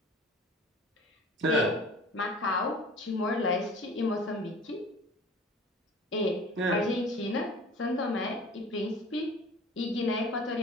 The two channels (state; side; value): normal; both; correlation 0.43